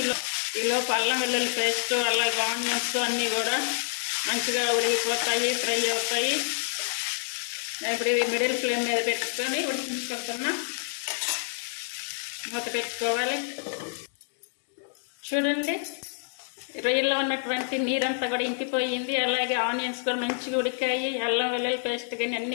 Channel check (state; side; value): silent; right; digital silence